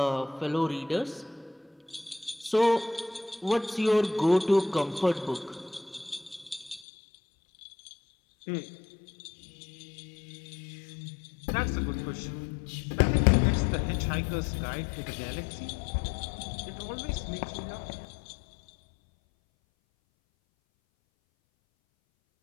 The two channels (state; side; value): drops out; right; at 6.8 s